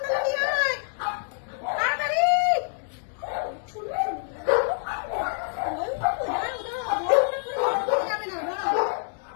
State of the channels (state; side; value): silent; right; digital silence